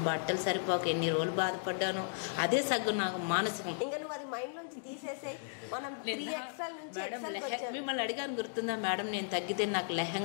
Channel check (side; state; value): right; silent; digital silence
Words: బట్టలు సరిపోక ఎన్ని రోజులు బాధపడ్డాను. అదే సగం నాకు మానసికం. ఇంకా నువ్వు అది మైండ్లోంచి తీసేసాయి. మనం 3XL నుంచి XLకి వచ్చాం. మిమ్మల్ని అడిగాను గుర్తుందా మేడం, నేను తగ్గితే నాకు